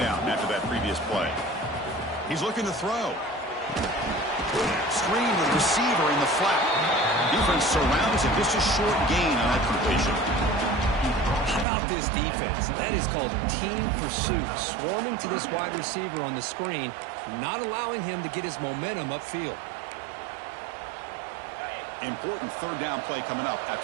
after that previous play. He's looking to throw. Screen with receiver in the flat. Defense surrounds him. Just a short gain on that completion. How about this defense? That is called team pursuit. Swarming to this wide receiver on the screen, not allowing him to get his momentum upfield. Important third down play coming up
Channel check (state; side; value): drops out; left; at 11.7 s